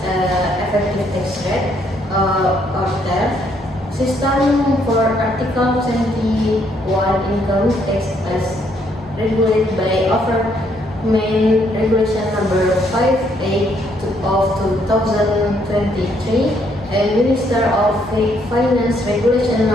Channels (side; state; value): both; normal; correlation 0.70